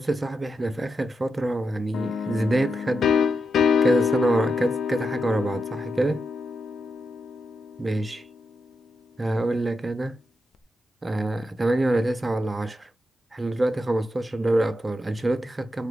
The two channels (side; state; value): both; normal; correlation 0.86